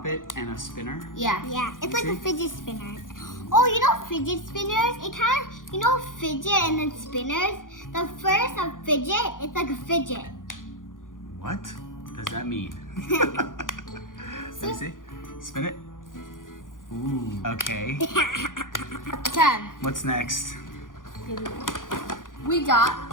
it and a spinner? Yeah. Yeah, it's like See? a fidget spinner. Oh, you know fidget spinners? It kind of, you know fidget and then spinners? The first of fidget, it's like a fidget. What does that mean? Let me see. Spin it. Ooh. Okay. 10. What's next? We got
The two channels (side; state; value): right; late; 0.89 ms